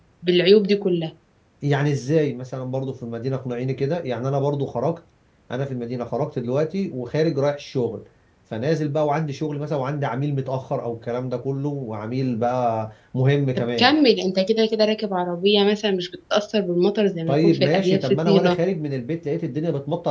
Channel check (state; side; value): identical; both; correlation 1.00